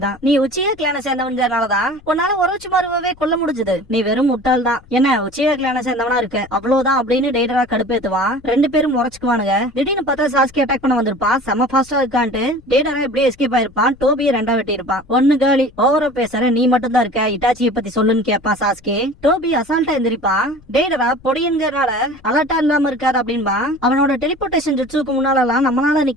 தான். நீ உச்சியா கிளான சேர்ந்தவன்கிறனாலதான் உன்னால ஒரோச்சிமாருவே கொல்ல முடிஞ்சது. நீ வெறும் முட்டாள் தான். என்ன உச்சியா கிளான சேர்ந்தவனா இருக்க அவ்வளவுதான் அப்படின்னு டேடரா கடுப்பேத்துவான். ரெண்டு பேரும் முறைச்சுக்குவானுங்க. திடீர்னு பார்த்தா சாஸ்கே அட்டாக் பண்ண வந்திருப்பான். செம்ம ஃபாஸ்டா இருக்கான்ட்டு டேடரா எப்படியே எஸ்கேப் ஆயிருப்பான். டோபியை ரெண்டா வெட்டி இருப்பான். ஒண்ணு காலி ஓவரா பேசுற நீ மட்டும் தான் இருக்க, இட்டாச்சியை பத்தி சொல்லுன்னு கேப்பா சாஸ்கே. டோபி அசால்ட்டா எந்திரிப்பான். டேடரா பொடியன்கிறனால அலர்ட்டா இல்லாம இருக்காரு அப்படின்பா. அவனோட டெலிபோர்டேஷன் ஜெட்ஸுக்கு முன்னாலாம் நம்மளால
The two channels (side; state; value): left; noise; rumble, 25 dB below the sound